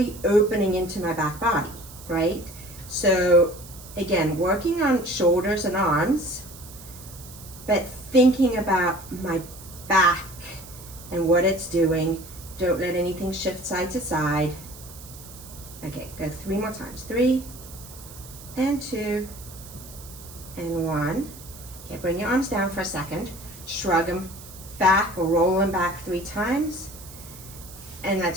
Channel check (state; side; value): noise; right; hiss, 17 dB below the sound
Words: opening into my back body, right? So again, working on shoulders and arms, but thinking about my back and what it's doing. Don't let anything shift side to side. Okay, go 3 more times. 3 and 2 and 1. Okay, bring your arms down for a second. Shrug them back or roll them back 3 times. And